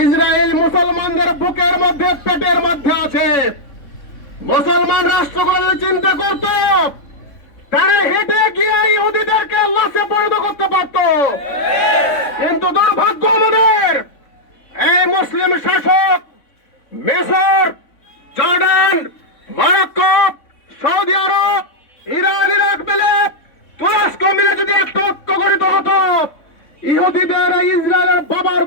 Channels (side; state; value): right; late; 3.6 ms